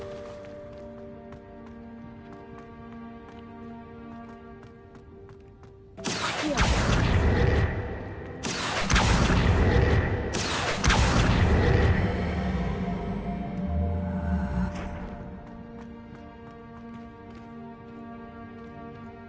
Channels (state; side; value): identical; both; correlation 1.00